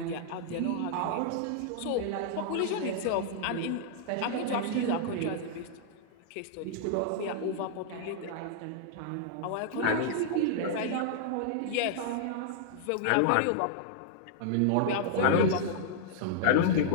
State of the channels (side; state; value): both; different; correlation -0.01